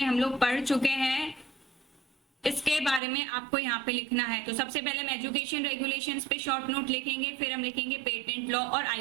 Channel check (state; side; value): drops out; left; at 3.0 s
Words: हम लोग पढ़ चुके हैं, इसके बारे में आपको यहाँ पे लिखना है। तो सबसे पहले हम एजुकेशन रेगुलेशंस पे शॉर्ट नोट लिखेंगे, फिर हम लिखेंगे पेटेंट लॉ और